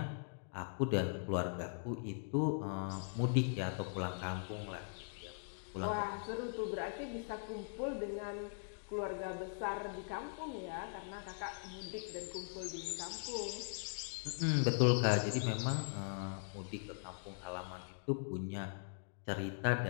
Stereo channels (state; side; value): silent; right; digital silence